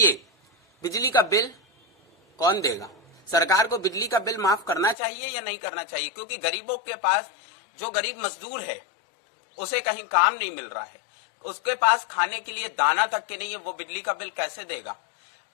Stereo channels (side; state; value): right; drops out; at 5.0 s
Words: बिजली का बिल कौन देगा? सरकार को बिजली का बिल माफ करना चाहिए या नहीं करना चाहिए? क्योंकि गरीबों के पास, जो गरीब मजदूर है उसे कहीं काम नहीं मिल रहा है, उसके पास खाने के लिए दाना तक के नहीं है, वो बिजली का बिल कैसे देगा?